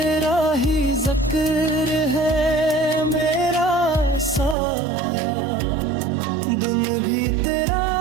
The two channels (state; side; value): drops out; left; at 4.5 s